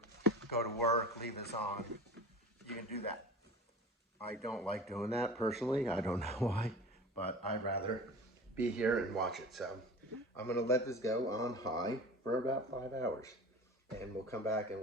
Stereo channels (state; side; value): normal; both; correlation 0.36